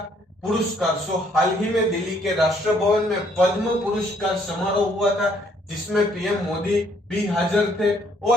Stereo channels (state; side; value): normal; both; correlation 0.66